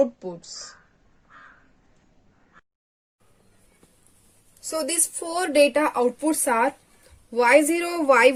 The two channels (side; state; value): both; identical; correlation 1.00